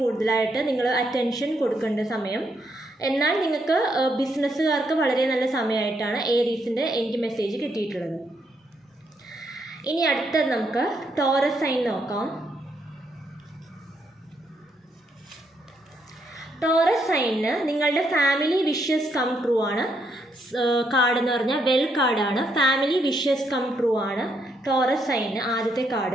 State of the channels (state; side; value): normal; both; correlation 0.76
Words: കൂടുതലായിട്ട് നിങ്ങൾ അറ്റൻഷൻ കൊടുക്കേണ്ട സമയം. എന്നാൽ നിങ്ങൾക്ക് ബിസിനസ്സുകാർക്ക് വളരെ നല്ല സമയമായിട്ടാണ് ഏരീസിൻ്റെ എനിക്ക് മെസ്സേജ് കിട്ടിയിട്ടുള്ളത്. ഇനി അടുത്തത് നമുക്ക് ടോറസ് സൈൻ നോക്കാം. ടോറസ് സൈനിന് നിങ്ങളുടെ ഫാമിലി വിഷസ് കം ട്രൂ ആണ് കാർഡ് എന്ന് പറഞ്ഞാൽ വെൽ കാർഡാണ്. ഫാമിലി വിഷസ് കം ട്രൂ ആണ് ടോറസ് സൈനിന് ആദ്യത്തെ